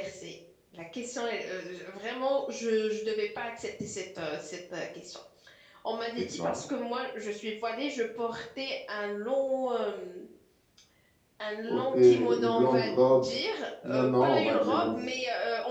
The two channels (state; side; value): identical; both; correlation 1.00